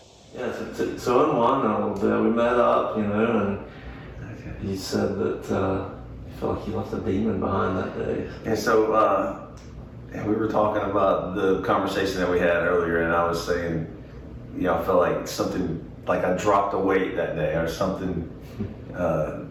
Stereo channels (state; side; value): identical; both; correlation 1.00